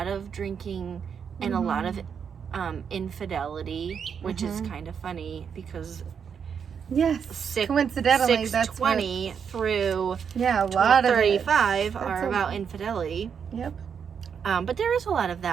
of drinking and a lot of infidelity, which is kind of funny because coincidentally 6:20 through a lot 35 are about infidelity. Yep. But there is a lot of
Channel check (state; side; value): quieter; left; 7.1 dB